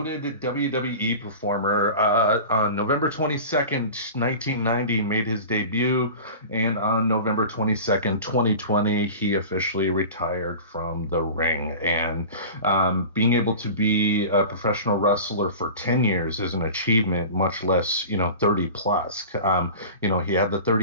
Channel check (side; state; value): both; inverted; correlation -0.35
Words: WWE performer, on November 22nd, 1990, made his debut, and on November 22nd, 2020, he officially retired from the ring. And being able to be a professional wrestler for 10 years is an achievement, much less, 30 plus. He had the